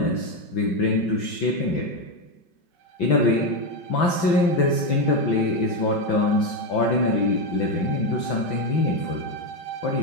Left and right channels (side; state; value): right; late; 5.9 ms